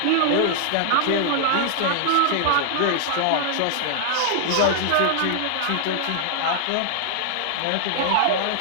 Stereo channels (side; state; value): both; different; correlation -0.01